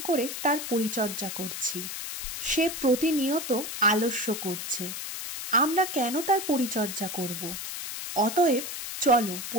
করে তার পরিচর্যা করছি। সে প্রতিনিয়ত আলস্য করছে। আমরা কেন তার পরিচর্যা করব? অতএব চলো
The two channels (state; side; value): noise; left; hiss, 6 dB below the sound